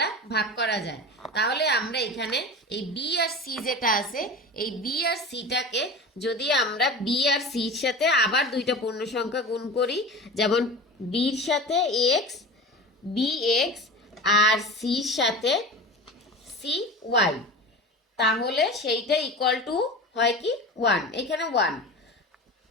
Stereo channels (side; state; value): both; normal; correlation 0.32